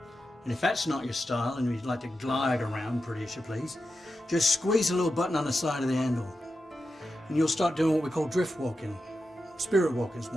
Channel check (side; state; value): both; normal; correlation 0.90